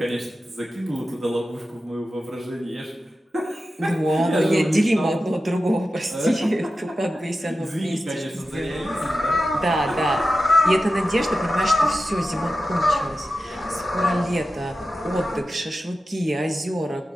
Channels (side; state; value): both; normal; correlation 0.92